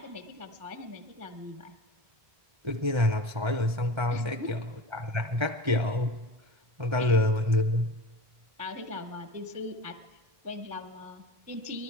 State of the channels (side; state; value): left; late; 1.3 ms